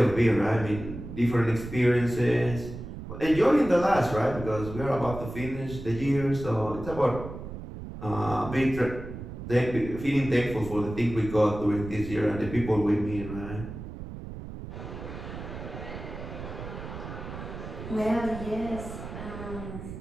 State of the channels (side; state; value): right; noise; rumble, 10 dB below the sound